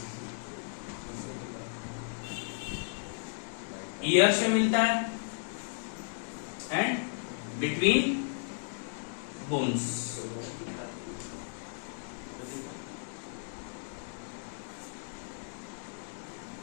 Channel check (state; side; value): silent; right; 55 dB below the other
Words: ईयर से मिलता है एंड बिटवीन बोन्स।